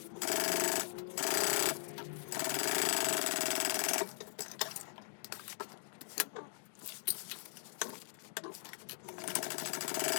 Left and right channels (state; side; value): silent; right; 51 dB below the other